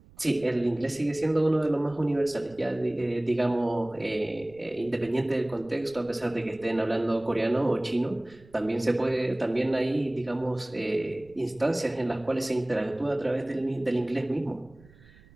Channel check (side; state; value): right; noise; rumble, 25 dB below the sound